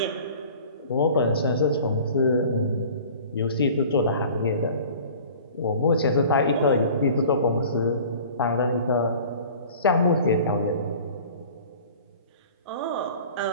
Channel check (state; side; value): inverted; both; correlation -0.45